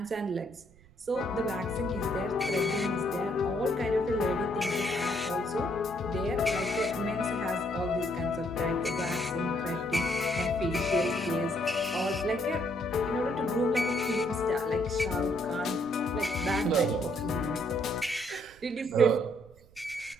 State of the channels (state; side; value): noise; right; rumble, 25 dB below the sound